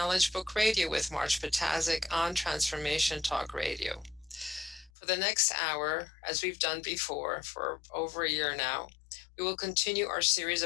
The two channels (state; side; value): drops out; right; at 4.9 s